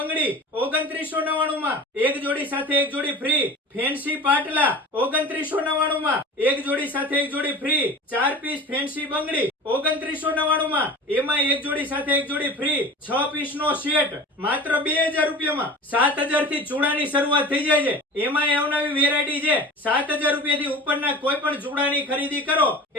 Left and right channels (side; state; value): both; normal; correlation 0.36